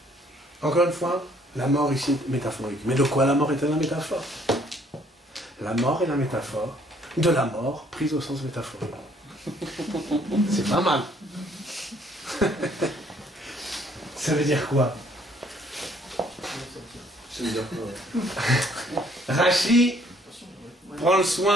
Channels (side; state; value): both; normal; correlation 0.63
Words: Encore une fois, la mort ici est métaphorique. Mais de quoi la mort est-elle la métaphore? la mort est la métaphore de la mort prise au sens métaphorique. C'est pas mal. Ça veut dire quoi? Ça veut dire quoi? Rachi prend le